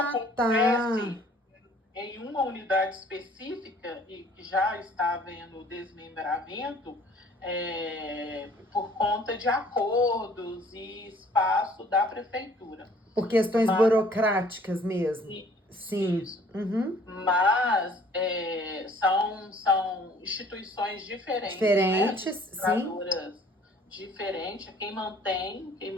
acontece em uma unidade específica e que já está havendo desmembramento por conta de acordos e espaço da prefeitura. Por questões burocráticas mesmo. Sim. Isso. Uhum. Mas são instituições diferentes, Sim. Diferentes. Quem mantém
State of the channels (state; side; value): normal; both; correlation 0.56